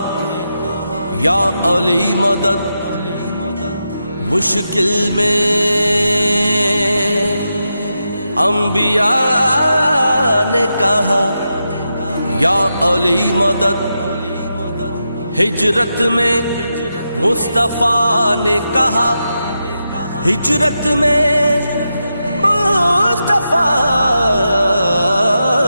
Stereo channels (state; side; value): inverted; both; correlation -0.87